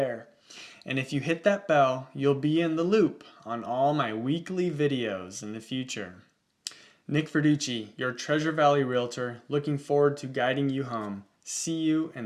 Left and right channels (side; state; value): both; identical; correlation 1.00